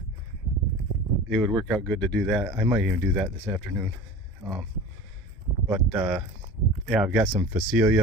it would work out good to do that. I might even do that this afternoon. Yeah, I've got some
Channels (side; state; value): both; normal; correlation 0.37